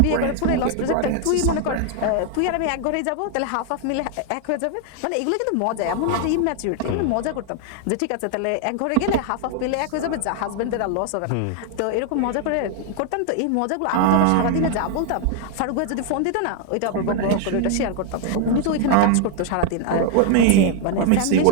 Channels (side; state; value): both; different; correlation 0.00